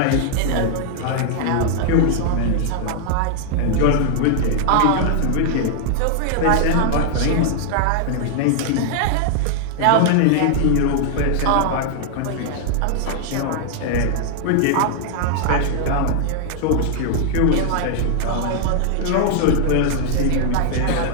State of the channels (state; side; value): different; both; correlation 0.00